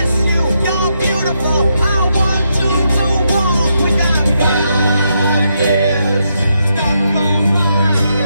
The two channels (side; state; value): both; inverted; correlation -0.80